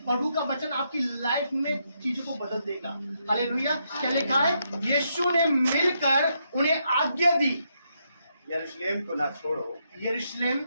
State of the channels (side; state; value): both; inverted; correlation -0.79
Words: प्रभु का वचन आपकी लाइफ में चीजों को बदल देगा। हालेलुया। क्या लिखा है? यीशु ने मिलकर उन्हें आज्ञा दी, यरूशलेम को ना छोड़ो। यरूशलेम